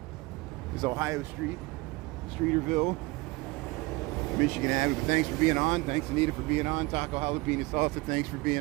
Ohio Street, Streeterville, Michigan Avenue. But thanks for being on. Thanks, Anita, for being on. Taco Jalapeno Salsa, thanks for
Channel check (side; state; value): left; quieter; 23.6 dB